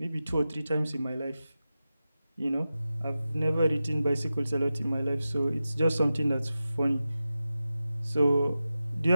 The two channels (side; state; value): both; inverted; correlation -0.92